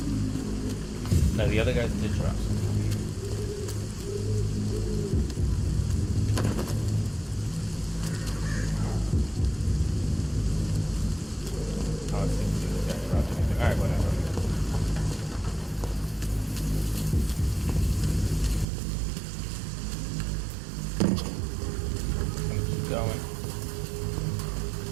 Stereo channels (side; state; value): left; drops out; at 18.7 s